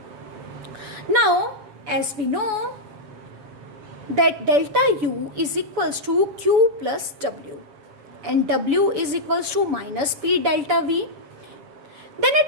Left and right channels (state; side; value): late; left; 6.9 ms